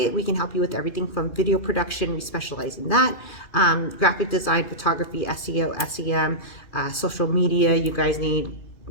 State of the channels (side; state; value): right; late; 2.4 ms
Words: We can help you with everything from video production. We specialize in that. Graphic design, photography, SEO, SEM, social media. You guys need,